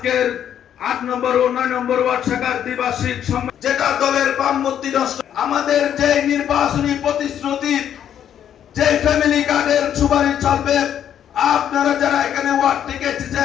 ৮ নম্বর ও ৯ নম্বর ওয়ার্ড শাখার দ্বিবার্ষিক সম্মেলন, যেটা দলের বামমূর্তি নষ্ট, আমাদের যে নির্বাচনী প্রতিশ্রুতি, যে ফ্যামিলি কার্ডের সুপারিশ চলবে, আপনারা যারা এখানে ওয়ার্ড থেকে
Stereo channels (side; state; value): right; quieter; 9.7 dB